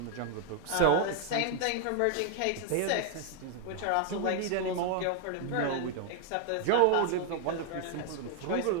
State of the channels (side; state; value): both; different; correlation 0.00